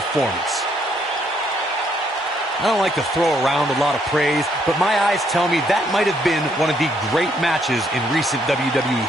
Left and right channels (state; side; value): normal; both; correlation 0.71